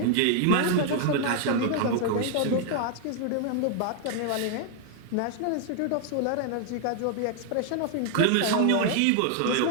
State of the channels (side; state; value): both; different; correlation 0.00